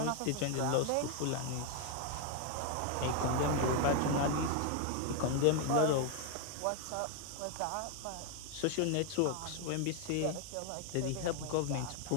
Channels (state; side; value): different; both; correlation 0.01